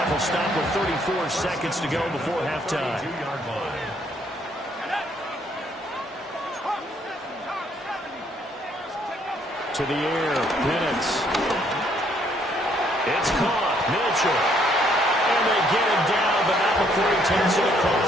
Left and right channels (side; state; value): both; normal; correlation 0.68